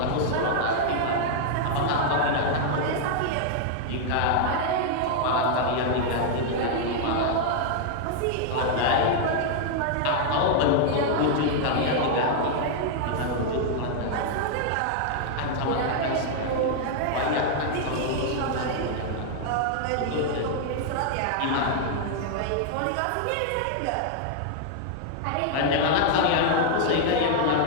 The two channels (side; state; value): both; different; correlation -0.01